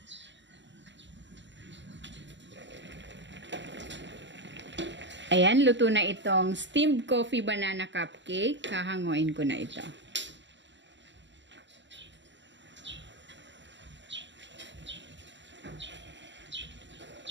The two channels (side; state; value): left; late; 0.53 ms